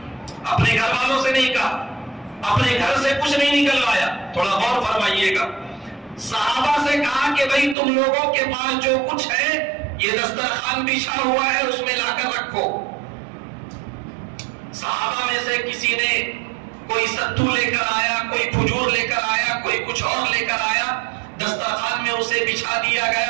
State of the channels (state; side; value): drops out; left; at 7.8 s